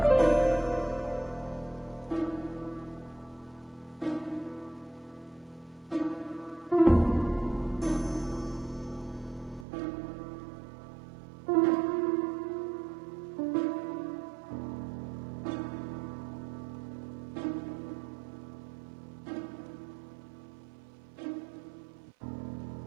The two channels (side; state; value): left; drops out; at 9.7 s